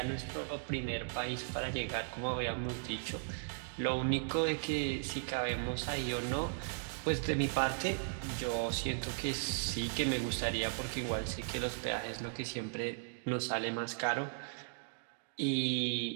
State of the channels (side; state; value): left; silent; digital silence